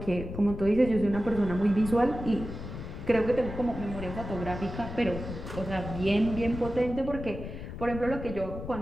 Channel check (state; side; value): noise; left; rumble, 9 dB below the sound